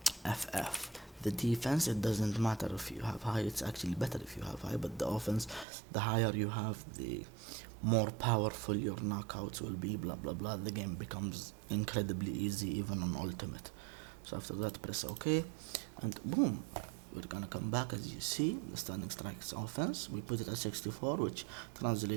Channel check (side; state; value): left; drops out; at 5.7 s